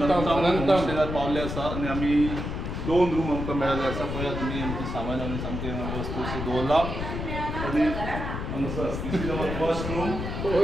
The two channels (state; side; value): noise; left; rumble, 4 dB below the sound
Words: पावले आसा आनी आमी 2 रूम आमकां मेळ्ळे आसा. पळया तुमी आमचे सामान आमी सामके वस्तू दवरला आनी हांगासर फर्स्ट रूम